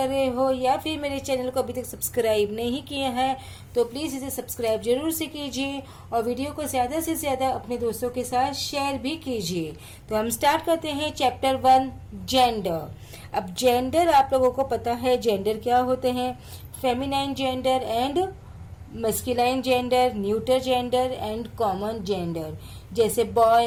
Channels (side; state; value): both; identical; correlation 1.00